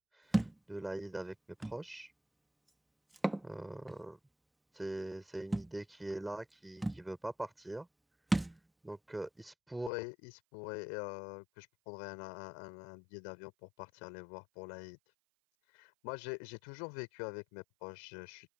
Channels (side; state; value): right; drops out; at 9.9 s